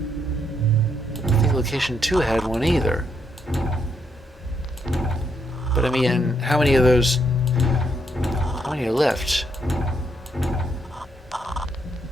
think location 2 had one either. But I mean, how many of those? How many are left?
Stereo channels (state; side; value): normal; both; correlation 0.76